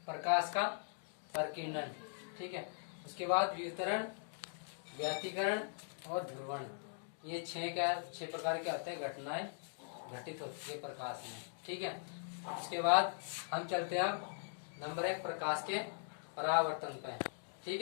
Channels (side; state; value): right; silent; digital silence